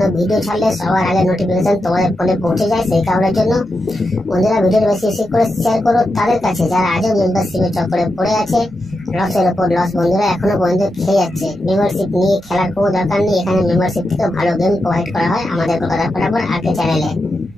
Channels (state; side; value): noise; right; hum, 28 dB below the sound